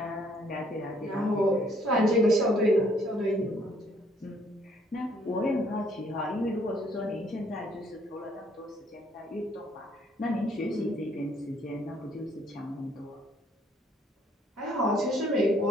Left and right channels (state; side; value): normal; both; correlation 0.65